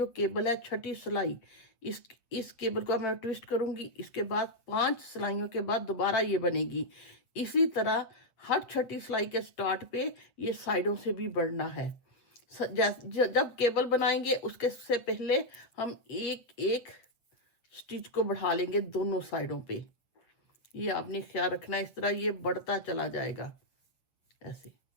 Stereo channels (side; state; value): right; late; 7.9 ms